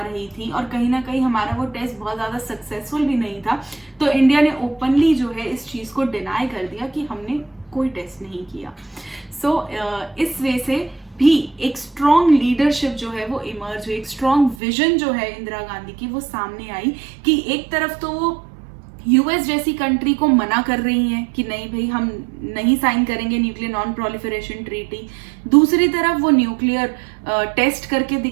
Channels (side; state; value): left; drops out; at 14.6 s